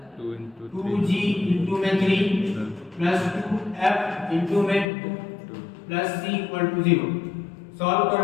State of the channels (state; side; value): drops out; right; at 4.9 s